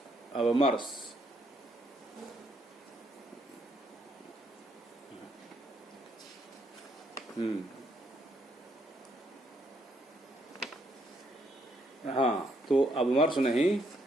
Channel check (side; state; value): both; normal; correlation 0.73